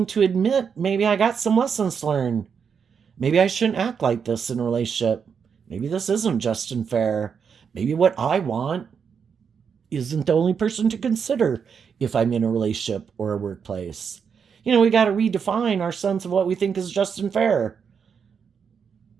to admit, maybe I got some lessons to learn. Maybe I shouldn't act like this in a relationship. Maybe this isn't just and fair. Maybe what I want isn't the only person to consider if I'm in a relationship or a workplace. We got to redefine our sense of what we think is just and fair.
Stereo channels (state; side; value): quieter; left; 6.6 dB